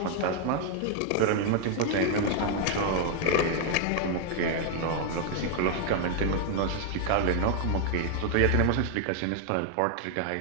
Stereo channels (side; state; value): both; different; correlation 0.00